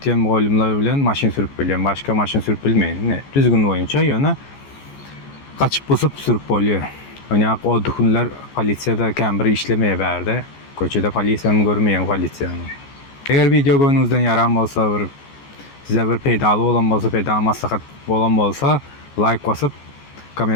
muallimler bilen maşin sürüp biliyorum. Başka maşin sürüp bilmeyin. Düzgün oyunca yana kaçıp basıp sürüp oluyor. Yani o dokunlar polisiyada kembri işlemeye verdi. Köçede polisiyanı görmeyen polisiyanı. Eğer video görünüzden yaram olsa size bir pedalı olan olsa pedal maslahat olan olsa like basıp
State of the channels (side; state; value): right; late; 14 ms